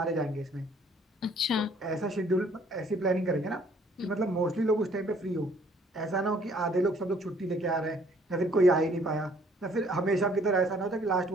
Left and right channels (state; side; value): normal; both; correlation 0.60